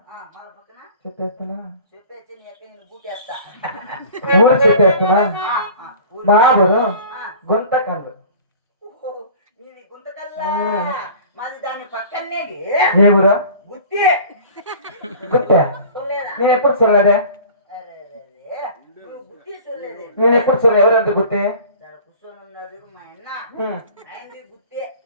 పక్కన చెప్పేస్తున్నా చెప్పేసి నీ ఎక్కడ నేను బూటేస్తా ఊరు చెప్పేస్తున్నా ఊరు. మా ఊరు ఆ, గుంతకల్లు ఓహో, నీది గుంతకల్లా మాది దాని పక్కనేది ఏ ఊరు గుత్తి గుత్తే చూడలేదా నేను ఎప్పుడు చూడలేదే అరే అరే, అరే. నువ్వు గుత్తి చూడలేదు నేను ఎప్పుడు చూడలేదు ఎవరంటే గుత్తి ఇక్కడ కూర్చొని ఉన్నాడు మా అన్న ఆయనది గుత్తే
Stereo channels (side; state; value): both; inverted; correlation -0.43